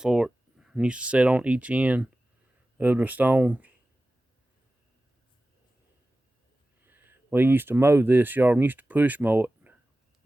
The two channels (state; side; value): normal; both; correlation 0.95